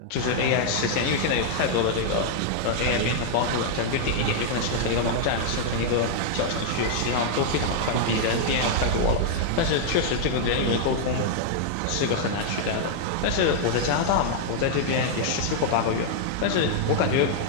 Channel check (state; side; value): different; both; correlation -0.01